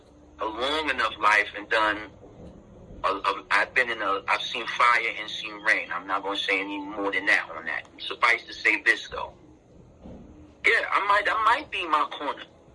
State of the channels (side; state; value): both; identical; correlation 1.00